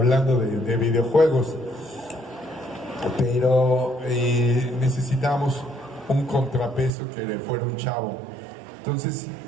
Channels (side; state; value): left; drops out; at 7.0 s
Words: de videojuegos. Pero necesitábamos un contrapeso que fuera un chavo. Entonces